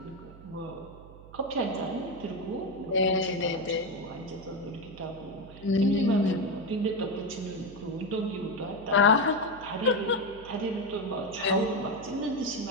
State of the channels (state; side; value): noise; right; hum, 18 dB below the sound